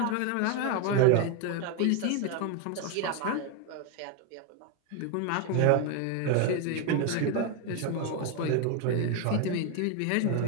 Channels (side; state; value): both; different; correlation 0.01